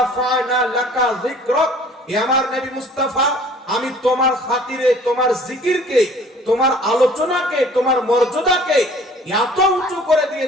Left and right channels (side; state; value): both; normal; correlation 0.52